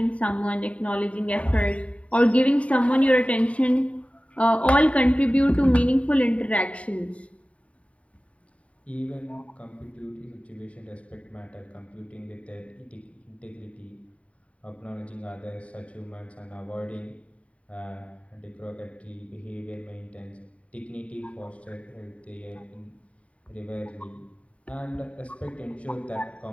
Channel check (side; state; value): right; late; 0.065 ms